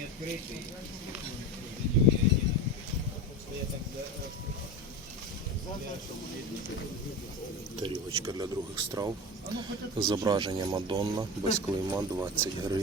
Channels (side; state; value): both; normal; correlation 0.27